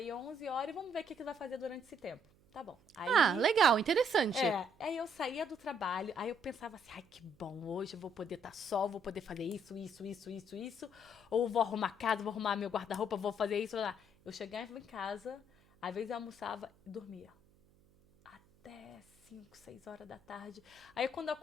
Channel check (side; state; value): right; noise; hum, 30 dB below the sound